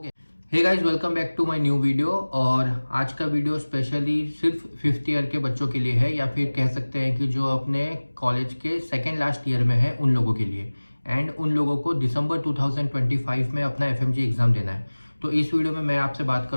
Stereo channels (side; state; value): both; inverted; correlation -1.00